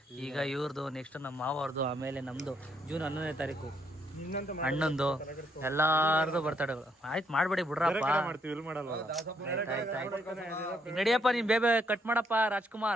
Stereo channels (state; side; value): normal; both; correlation 0.73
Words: ಈಗ ಇವ್ರದ್ದು, ನೆಕ್ಸ್ಟ್ ನಮ್ಮ ಮಾವವ್ರದ್ದು, ಆಮೇಲೆ ನಮ್ದು ಜೂನ್ 11ನೇ ತಾರೀಕು ಅಣ್ಣಂದು, ಎಲ್ಲಾರ್ದು ಬರ್ತಡೇಗಳು. ಆಯ್ತು ಮಾಡ್ಬೇಡಿ ಬಿಡ್ರಪ್ಪ. ನಡಿಯಪ್ಪ, ನೀನ್ ಬೇಬೆ ಕಟ್ ಮಾಡಪ್ಪ